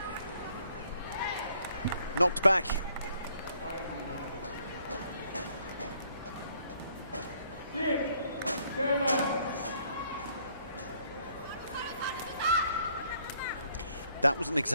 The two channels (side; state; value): both; inverted; correlation -0.65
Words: knocked back. That was an